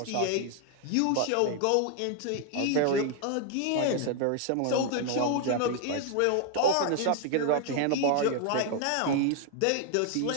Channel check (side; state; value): both; different; correlation 0.00